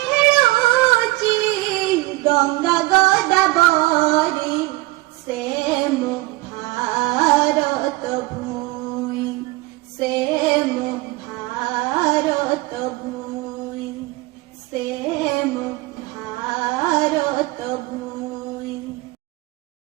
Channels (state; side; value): quieter; left; 20.9 dB